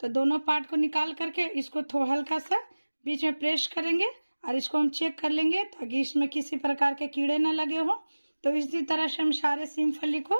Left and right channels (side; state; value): both; inverted; correlation -1.00